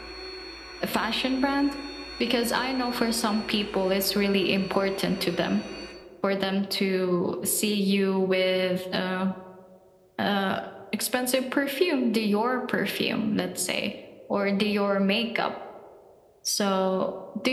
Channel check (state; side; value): identical; both; correlation 1.00